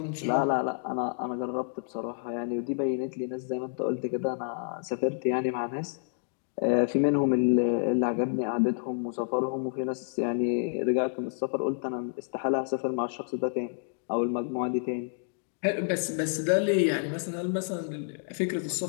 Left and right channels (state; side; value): silent; right; digital silence